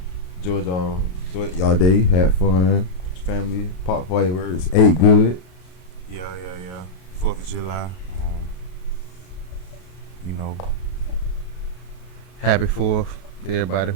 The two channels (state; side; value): late; right; 33 ms